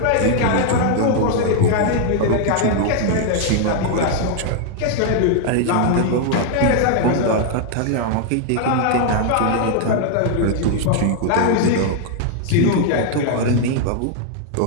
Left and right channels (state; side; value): different; both; correlation 0.00